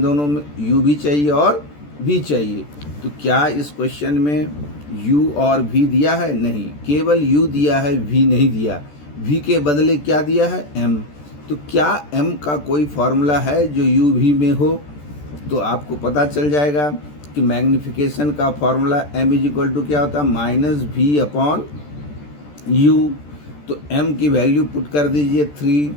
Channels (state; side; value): late; right; 14 ms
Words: दोनों में u भी चाहिए और v चाहिए। तो क्या इस क्वेश्चन में u और v दिया है? नहीं, केवल u दिया है, v नहीं दिया। v के बदले क्या दिया है? m। तो क्या m का कोई फार्मूला है जो u v में हो? तो आपको पता चल जाएगा कि मैग्नीफिकेशन का formula m is equal to क्या होता है? -v/u। तो m की वैल्यू पुट कर दीजिए 3,